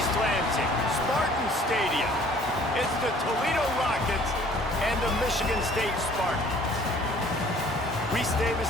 Lansing, Spartan Stadium. It's the Toledo Rockets and the Michigan State Spartans. Reese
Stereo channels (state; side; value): normal; both; correlation 0.54